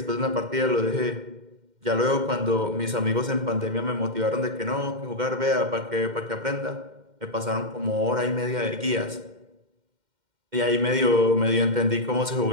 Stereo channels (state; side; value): late; left; 2.1 ms